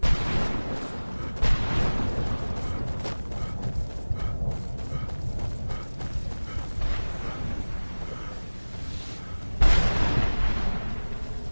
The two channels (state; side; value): inverted; both; correlation -1.00